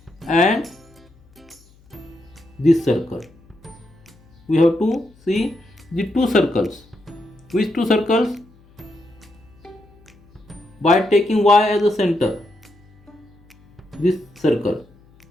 and this circle. We have to see the two circles. Which two circles? By taking y as a center, this circle.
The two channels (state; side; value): noise; left; hum, 29 dB below the sound